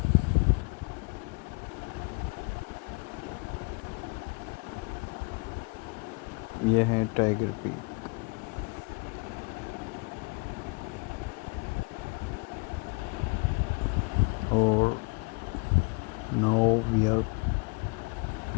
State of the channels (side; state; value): right; quieter; 31.2 dB